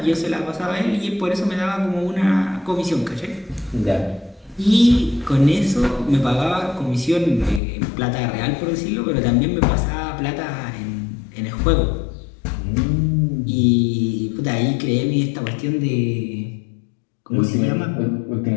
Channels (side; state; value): right; drops out; at 7.6 s